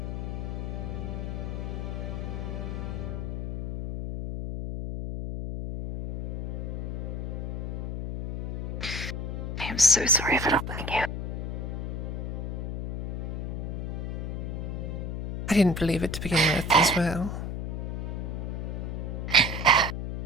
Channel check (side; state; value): left; noise; hum, 4 dB below the sound